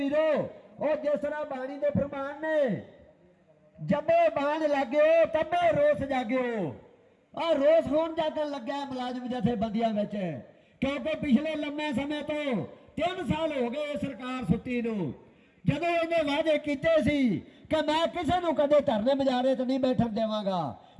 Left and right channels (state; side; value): identical; both; correlation 1.00